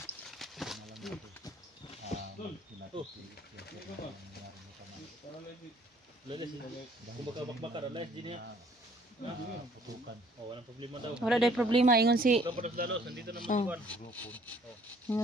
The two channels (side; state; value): both; normal; correlation 0.60